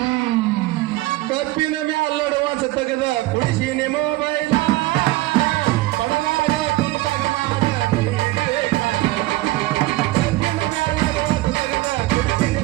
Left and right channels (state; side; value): quieter; left; 18.4 dB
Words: ಕಪ್ಪಿನ ಮ್ಯಾಲಡುವ ಸತ್ತಗದ ಕುಡಿಸಿನಿ ಮೊಬೈಲ್